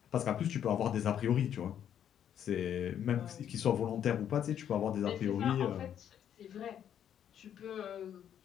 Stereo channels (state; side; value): quieter; right; 9.6 dB